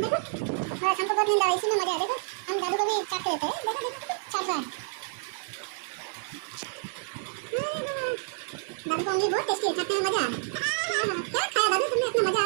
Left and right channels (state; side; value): silent; left; digital silence